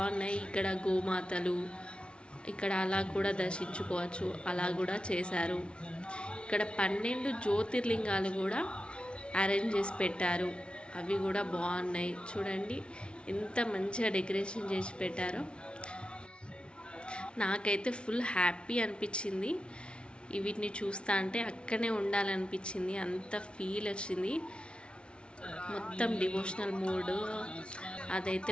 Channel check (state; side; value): late; right; 0.058 ms